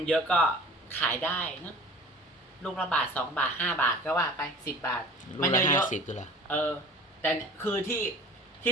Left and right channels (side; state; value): both; normal; correlation 0.43